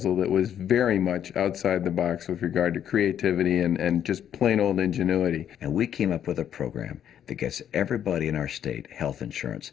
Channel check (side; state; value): right; quieter; 9.7 dB